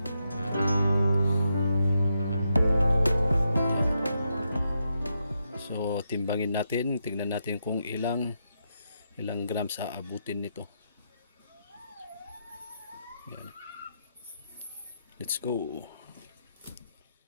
So timbangin natin, tingnan natin kung ilang grams aabutin nito. Yan. Let's go.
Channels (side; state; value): both; inverted; correlation -0.83